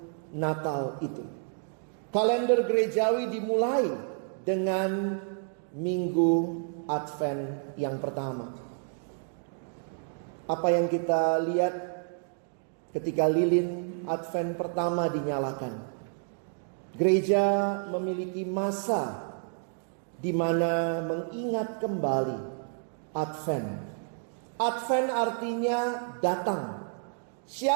Natal itu. Kalender gerejawi dimulai dengan Minggu Advent yang pertama. Apa yang kita lihat ketika lilin Advent pertama dinyalakan? Gereja memiliki masa di mana mengingat kembali Advent. Advent artinya datang.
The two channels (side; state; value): left; silent; 58 dB below the other